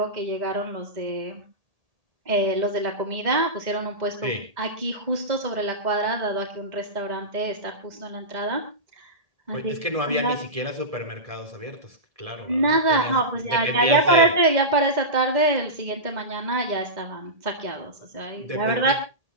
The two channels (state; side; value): late; left; 1.8 ms